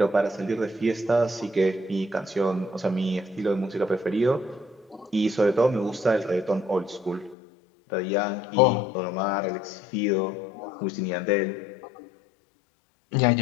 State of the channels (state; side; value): drops out; right; at 7.4 s